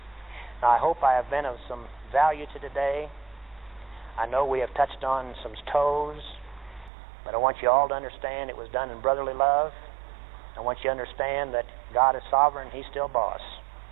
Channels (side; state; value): left; drops out; at 6.9 s